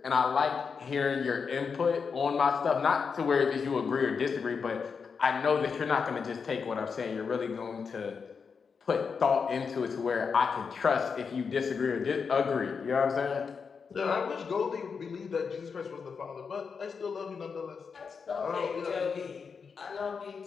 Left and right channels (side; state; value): right; quieter; 5.7 dB